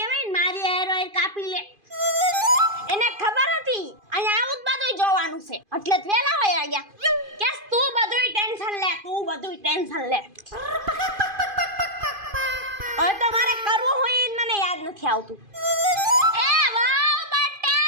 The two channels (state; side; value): late; left; 2.5 ms